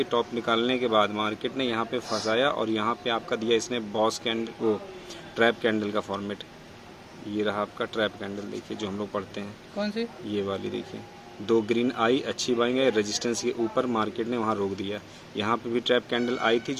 टॉप निकालने के बाद मार्केट ने यहाँ पे फंसाया और यहाँ पे आपका दिया इसने बॉस कैंडल, वो ट्रैप कैंडल का फॉर्मेट। ये रहा आपका ट्रैप कैंडल, देखिए जो हम लोग पढ़ते हैं। कौन सी? ये वाली देखिए, 2 ग्रीन आई, अच्छी बाइंग है, रेजिस्टेंस के ऊपर मार्केट ने वहाँ रोक दिया। यहाँ पे भी ट्रैप कैंडल आई थी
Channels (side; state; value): both; identical; correlation 1.00